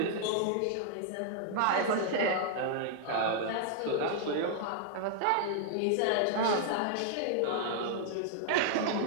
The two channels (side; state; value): both; different; correlation -0.01